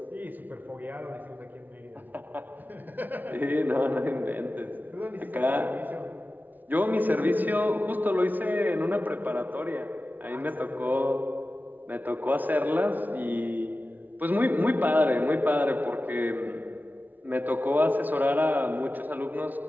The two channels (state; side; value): late; left; 0.082 ms